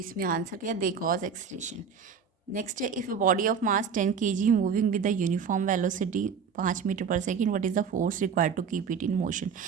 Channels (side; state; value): left; quieter; 6.4 dB